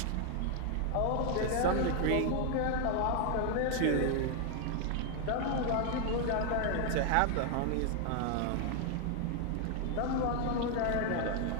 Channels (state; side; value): different; both; correlation 0.00